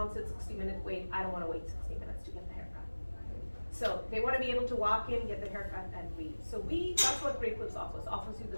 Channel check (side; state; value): both; inverted; correlation -1.00